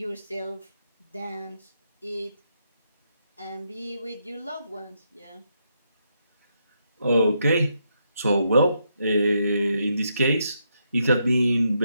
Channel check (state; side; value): inverted; both; correlation -0.79